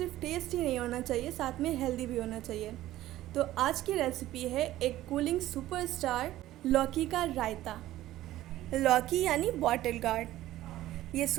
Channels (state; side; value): quieter; left; 14.9 dB